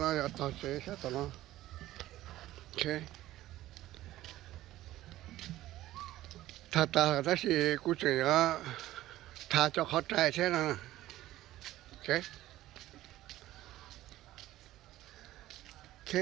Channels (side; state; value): left; quieter; 15.1 dB